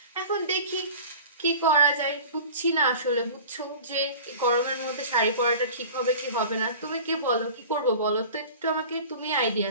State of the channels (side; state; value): both; inverted; correlation -0.39